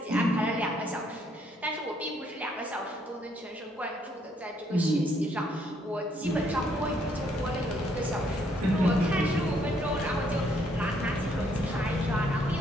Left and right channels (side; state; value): both; normal; correlation 0.69